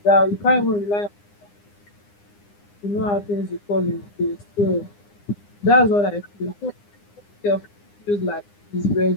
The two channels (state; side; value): late; right; 9.8 ms